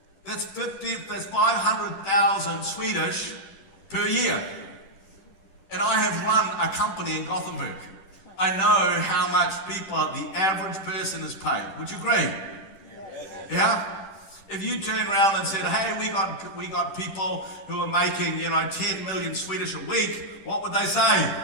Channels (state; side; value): late; right; 10 ms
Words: That's 500,000 Swedish per year. And I have run a company in Gothenburg. I know how much the average person is paid. Would you agree? Yeah? If you turn around and said, hey, we got people who are making, 10 million Swedish a week, what would they say?